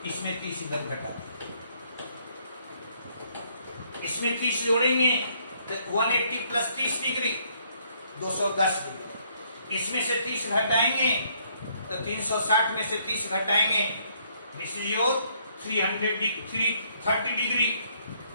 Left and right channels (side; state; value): both; inverted; correlation -0.68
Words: इसमें 30 इधर घटा दीजिए। इसमें 30 जोड़ेंगे तो 180 + 30 डिग्री 210 डिग्री। इसमें से 30 घटाएंगे तो 360 में से 30 घटाएंगे, दिस इज योर 330 डिग्री।